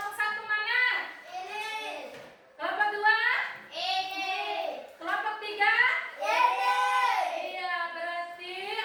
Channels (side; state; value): both; identical; correlation 1.00